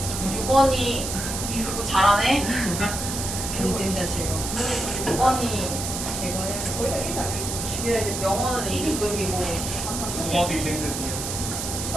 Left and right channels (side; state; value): right; noise; hiss, 4 dB below the sound